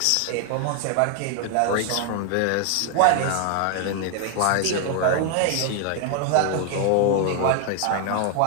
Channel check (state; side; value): different; both; correlation 0.00